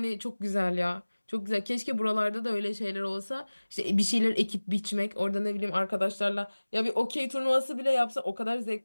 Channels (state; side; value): inverted; both; correlation -1.00